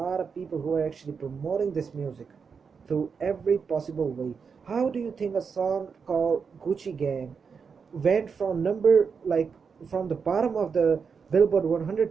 of people who are actually promoting this music through every possible way. How do you think a song called Gucci Gang went from from the bottom of the Billboard 100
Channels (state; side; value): quieter; left; 5.8 dB